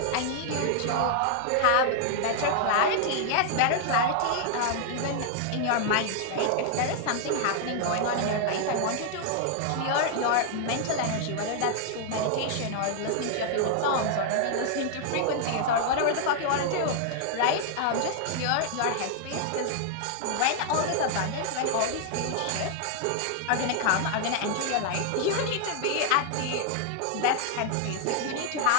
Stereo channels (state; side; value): different; both; correlation 0.00